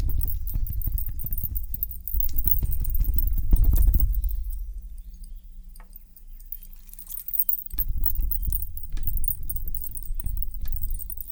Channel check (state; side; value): identical; both; correlation 1.00